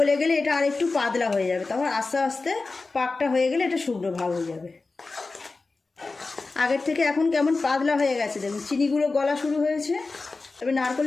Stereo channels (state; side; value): quieter; right; 3.7 dB